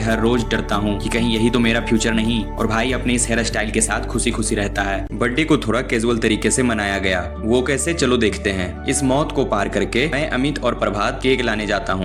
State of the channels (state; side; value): identical; both; correlation 1.00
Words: रोज डरता हूँ कि कहीं यही तो मेरा फ्यूचर नहीं। और भाई अपने इस हेयर स्टाइल के साथ खुशी खुशी रहता है। बर्थडे को थोड़ा कैजुअल तरीके से मनाया गया, वो कैसे चलो देखते हैं। इस मौत को पार करके मैं अमित और प्रभात केक लाने जाता